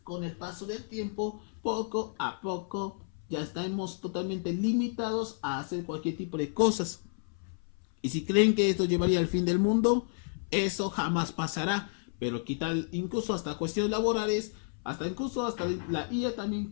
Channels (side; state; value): right; silent; 57 dB below the other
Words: con el paso del tiempo. Poco a poco ya estamos totalmente limitados a hacer cualquier tipo de cosas. Y si creen que esto llevaría al fin del mundo, eso jamás pasará. Pero quitar incluso hasta cuestiones laborales, hasta la IA también